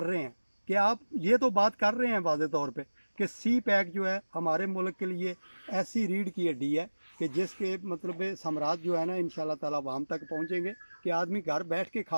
रहे हैं कि आप ये तो बात कर रहे हैं वाज़े तौर पे कि सी पैक जो है हमारे मुल्क के लिए ऐसी रीढ़ की हड्डी है कि जिसके मतलब साम्राज्य जो है ना इंशाल्लाह ताला वाम तक पहुँचेंगे कि आदमी घर बैठ के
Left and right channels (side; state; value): both; inverted; correlation -1.00